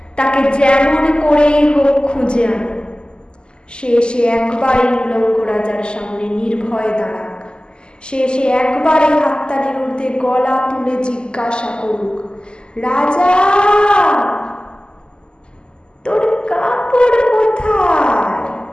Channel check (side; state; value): right; late; 0.048 ms